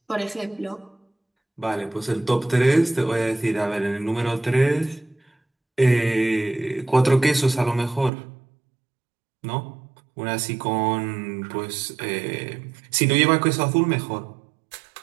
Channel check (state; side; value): drops out; left; at 8.1 s